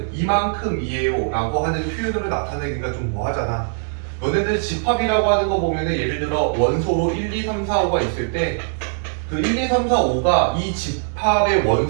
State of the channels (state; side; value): silent; left; digital silence